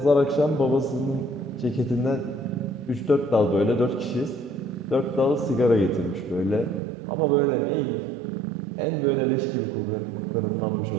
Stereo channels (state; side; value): drops out; left; at 6.8 s